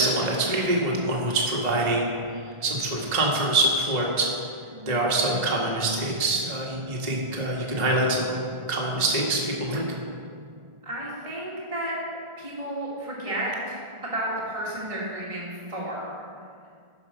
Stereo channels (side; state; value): left; late; 1.4 ms